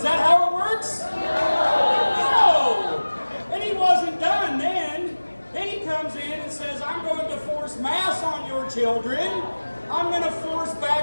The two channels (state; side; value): inverted; both; correlation -1.00